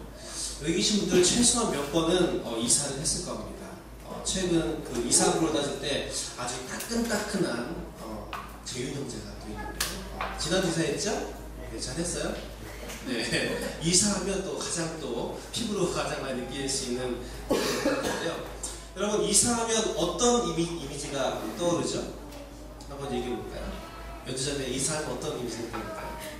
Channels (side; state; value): both; identical; correlation 1.00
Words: 여기 계신 분들 최소한 몇 번은 이사를 했을 겁니다. 최근 그 이사부로 따질 때 아주 따끈따끈한 재윤 형제가 또 있는데요. 지난주 이사했죠? 네, 잘했어요? 네. 이사하면 또 가장 또 피부로 가장 많이 느낄 수 있는 건데요. 여러분 이사하면 어떤 이미지가 떠오르죠? 한번 얘기해 볼까요? 몇 주 전에 이사하면 어떤 이미지가 떠오를까요?